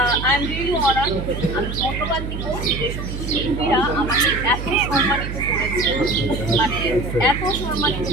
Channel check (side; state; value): right; noise; hum, 6 dB below the sound